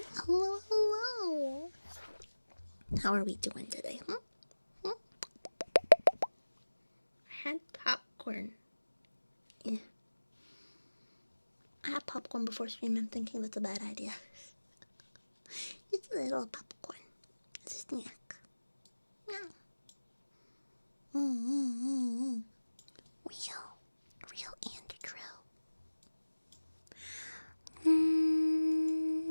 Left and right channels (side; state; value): both; inverted; correlation -1.00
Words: Hello. How are we doing today? I had popcorn. Yeah. I had popcorn before stream. I'm thinking that's a bad idea. Just a little popcorn. It's a snack. Yeah. Real and true.